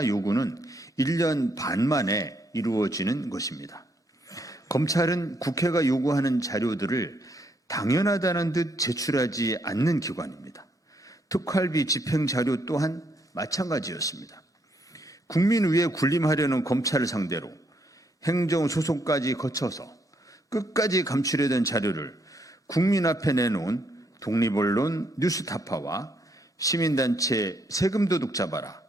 요구는 1년 반 만에 이루어지는 것입니다. 검찰은 국회가 요구하는 자료들을 당연하다는 듯 제출하지 않는 기관입니다. 특활비 집행 자료 또한 마찬가지였습니다. 국민 위에 군림하려는 검찰을 상대로 행정소송까지 거쳐서 끝까지 감추려던 자료를 국민 앞에 내놓은 독립언론 뉴스타파와 시민단체 세금도둑 잡아라,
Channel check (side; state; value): both; normal; correlation 0.73